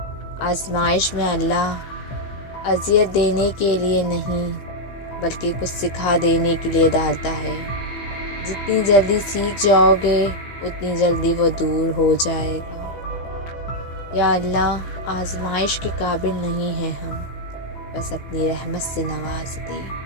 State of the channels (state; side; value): late; right; 15 ms